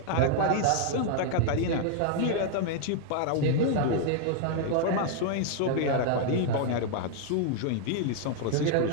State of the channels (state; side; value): different; both; correlation 0.00